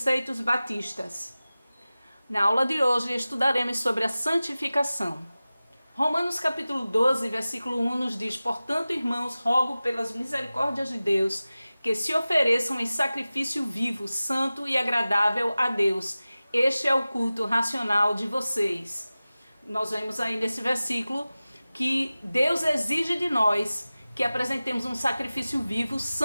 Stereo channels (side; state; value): both; inverted; correlation -0.97